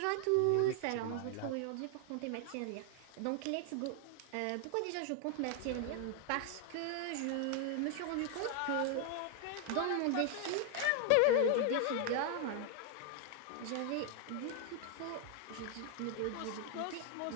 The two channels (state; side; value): different; both; correlation 0.00